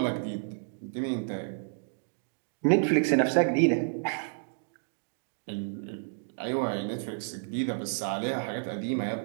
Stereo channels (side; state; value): left; silent; digital silence